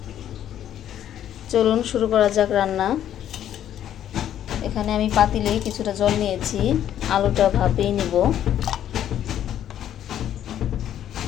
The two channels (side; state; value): right; quieter; 10.8 dB